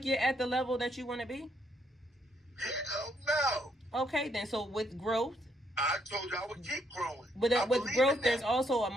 you're at the level that you want to be? Hell no. Okay, then. So with growth, I told you I would keep growing. But with growth, there's also a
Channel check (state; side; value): normal; both; correlation 0.73